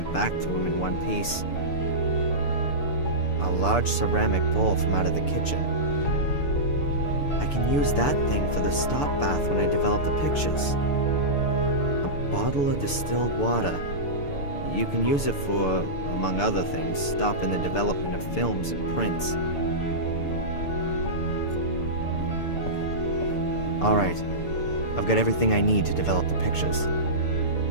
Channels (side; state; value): right; late; 6.9 ms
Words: back to him in one piece. A large ceramic bowl from out of the kitchen. I can use that thing for the stop bath when I develop the pictures. A bottle of distilled water. You can use it for, among other things, stopping the development of films and prints. Alright, I've got everything I need to develop the pictures.